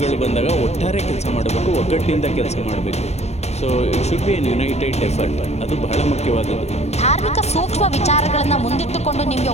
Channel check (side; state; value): right; late; 0.31 ms